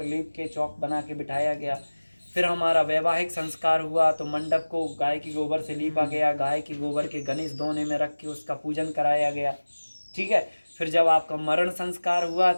लीप के चौक बना के बिठाया गया। फिर हमारा वैवाहिक संस्कार हुआ, तो मंडप को गाय के गोबर से लीपा गया, गाय के गोबर के गणेश दोने में रख के उसका पूजन कराया गया, ठीक है। फिर जब आपका मरण संस्कार हुआ,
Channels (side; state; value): both; inverted; correlation -1.00